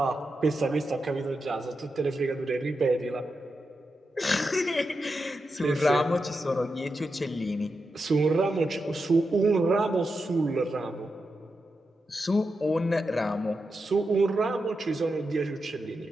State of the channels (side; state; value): both; normal; correlation 0.88